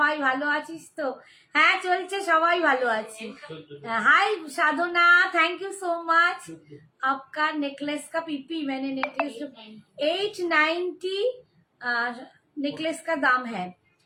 ভালো আছিস তো? হ্যাঁ চলছে, সবাই ভালো আছি। हाय साधना, थैंक यू सो मच। आपका नेकलेस का पीपी, मैंने नेकलेस 890 नेकलेस का दाम है।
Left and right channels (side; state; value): both; identical; correlation 1.00